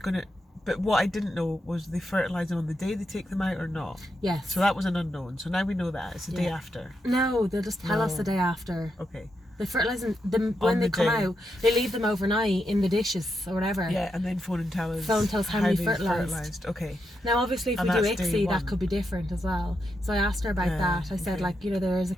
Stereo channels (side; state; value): both; normal; correlation 0.84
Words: But what I didn't know was they fertilize them on the day they take them out or not. Yes. So that was an unknown. So now we know that it's the day after. No, they'll just tell us the day after. Okay. They fertilise them when they come out. They leave them overnight in the dishes or whatever. Yeah, and then phone and tell us. How many fertilised. Okay. Now, obviously, if we do ICSI, that could be different as well. So I asked her about that. I said, like, there is a